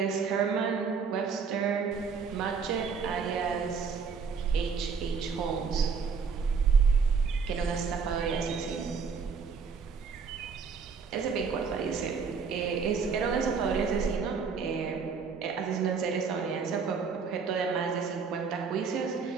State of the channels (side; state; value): left; quieter; 5.6 dB